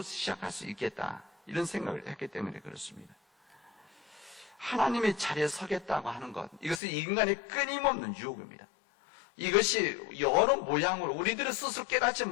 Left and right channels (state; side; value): drops out; right; at 6.8 s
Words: 시작할 수 있겠다. 이런 생각을 했기 때문에 그렇습니다. 하나님의 자리에 서겠다고 하는 것, 이것은 인간의 끊임없는 유혹입니다. 이것이 여러 모양으로 우리들은 스스로 깨닫지